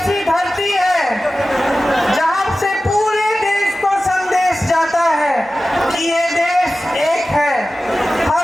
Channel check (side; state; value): both; normal; correlation 0.95